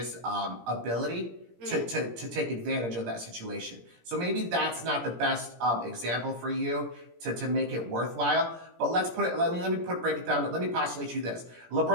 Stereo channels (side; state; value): left; late; 17 ms